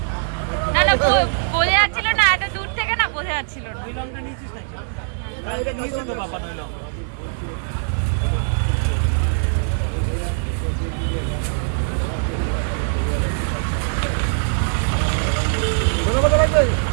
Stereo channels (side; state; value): left; silent; 63 dB below the other